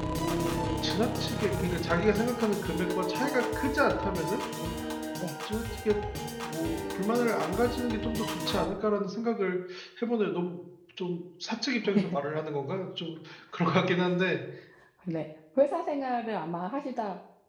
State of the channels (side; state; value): both; identical; correlation 1.00